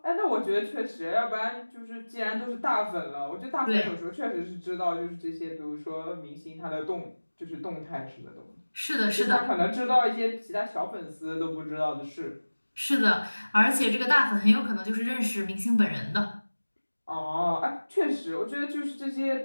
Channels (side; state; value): both; inverted; correlation -1.00